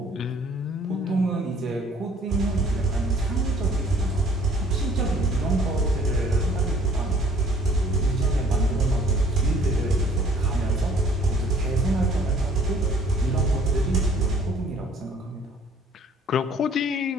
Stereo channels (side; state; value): both; normal; correlation 0.56